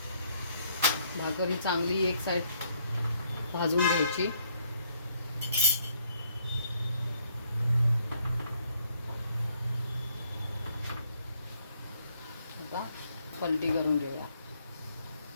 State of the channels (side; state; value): both; inverted; correlation -0.69